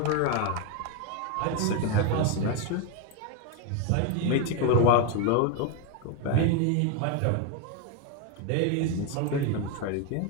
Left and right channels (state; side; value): different; both; correlation 0.02